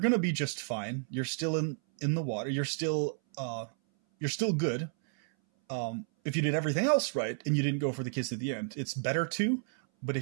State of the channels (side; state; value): left; silent; 57 dB below the other